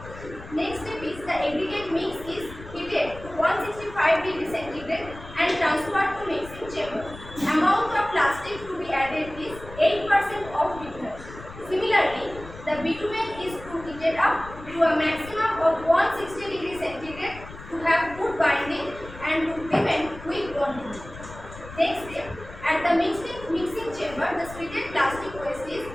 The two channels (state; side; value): noise; left; rumble, 15 dB below the sound